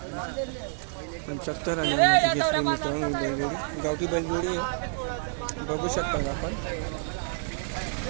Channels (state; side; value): silent; left; digital silence